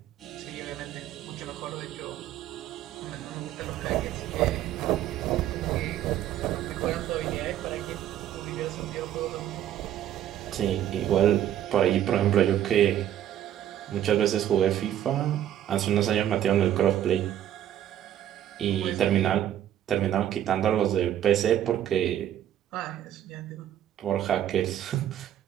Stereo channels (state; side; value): quieter; left; 11.3 dB